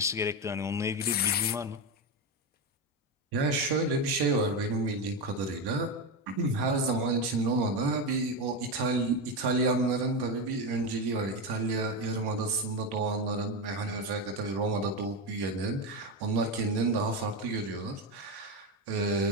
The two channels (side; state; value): both; normal; correlation 0.14